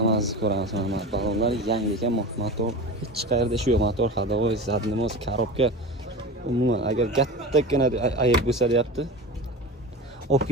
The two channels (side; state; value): both; normal; correlation 0.30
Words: ko'ramiz. Mana balonlar yangi ekan, motor hech qayerda ishi yo'q. Motor hadovoy, zadnimoz, korobka. Umuman agar kattagina ayib bo'lsa deyapti. Olib